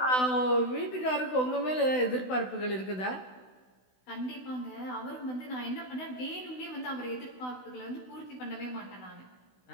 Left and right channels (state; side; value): late; right; 16 ms